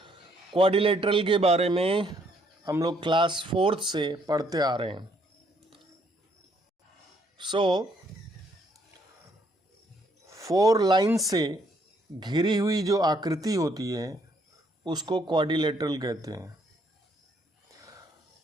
Quadrilateral के बारे में हम लोग क्लास 4th से पढ़ते आ रहे हैं. सो 4 लाइन से घिरी हुई जो आकृति होती है उसको क्वाड्रिलेटरल कहते हैं.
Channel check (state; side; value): normal; both; correlation 0.68